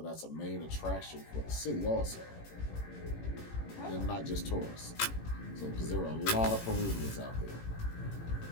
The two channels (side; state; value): right; late; 18 ms